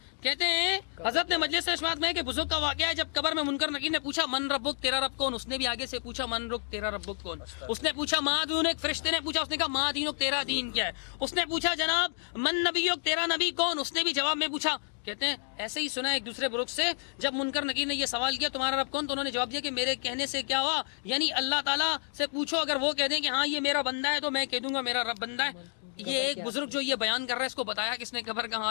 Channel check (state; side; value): silent; right; 58 dB below the other